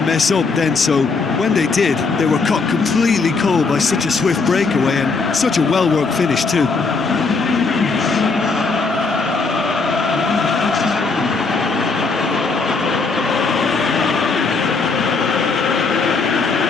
mess up then, so when they did, they were caught completely cold by such a swift breakaway and such a well-worked finish too.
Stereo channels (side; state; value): right; quieter; 4.3 dB